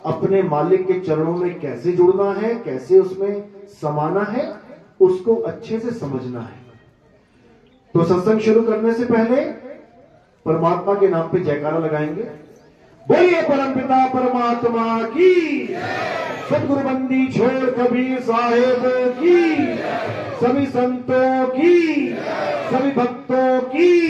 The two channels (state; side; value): identical; both; correlation 1.00